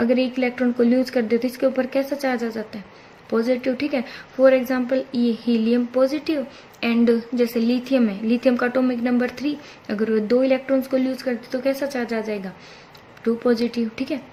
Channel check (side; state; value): both; identical; correlation 1.00